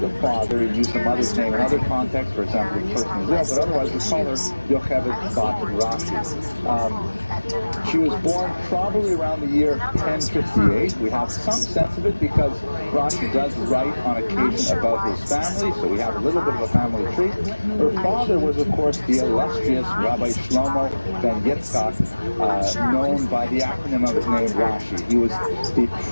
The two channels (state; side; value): inverted; both; correlation -1.00